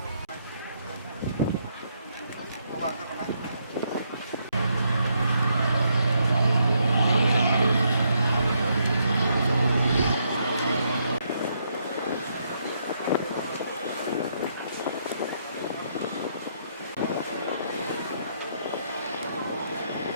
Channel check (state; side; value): inverted; both; correlation -0.75